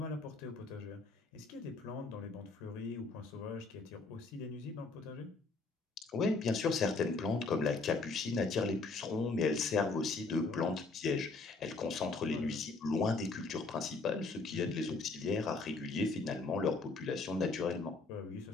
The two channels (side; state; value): right; quieter; 3.8 dB